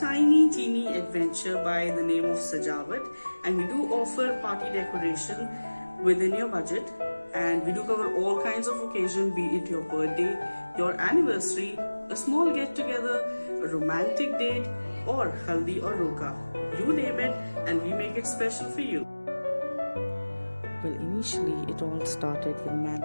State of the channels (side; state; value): both; inverted; correlation -1.00